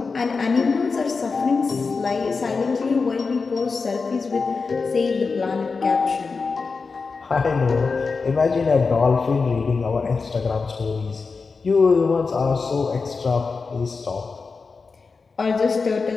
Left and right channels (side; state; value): right; quieter; 4.6 dB